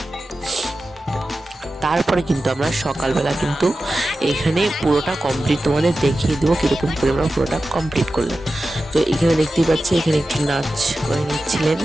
তারপরে কিন্তু আমরা সকালবেলা কিন্তু এখানে পুরোটা কমপ্লিট তোমাদের দেখিয়ে দেবো কীরকম করে আমরা পুরোটা কমপ্লিট করলাম। তো এখানে দেখতেই পাচ্ছি এখানে একটু নাচ করে নিচ্ছিলেন।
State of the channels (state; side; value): normal; both; correlation 0.93